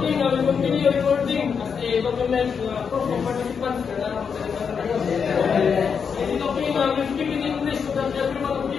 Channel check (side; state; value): right; quieter; 6.4 dB